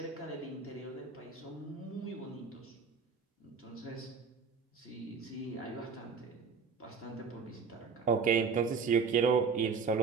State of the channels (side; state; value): left; quieter; 5.5 dB